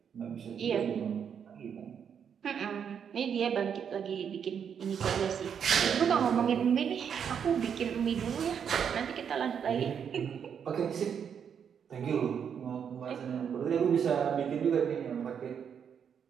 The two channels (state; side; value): quieter; left; 7.6 dB